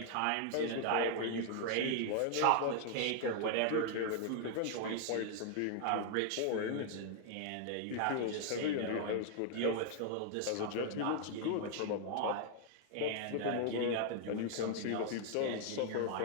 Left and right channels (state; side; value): different; both; correlation 0.00